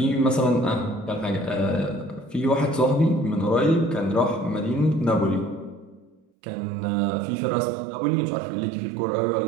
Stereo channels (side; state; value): left; drops out; at 6.2 s